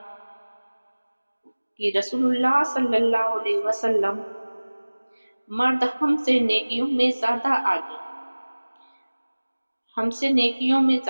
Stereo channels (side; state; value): both; inverted; correlation -1.00